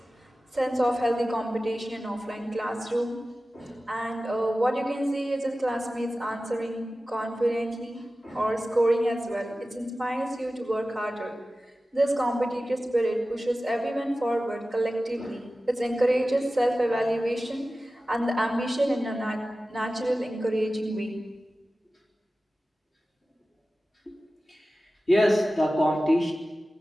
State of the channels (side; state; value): both; normal; correlation 0.95